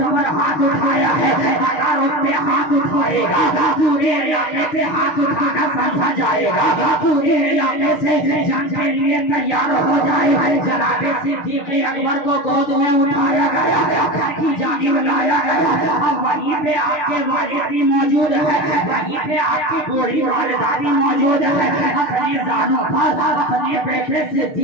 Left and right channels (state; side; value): late; right; 6.8 ms